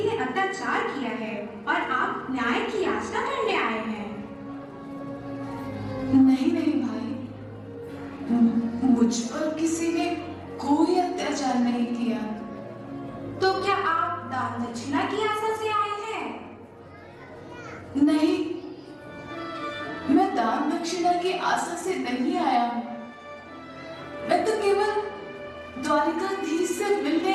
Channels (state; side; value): identical; both; correlation 1.00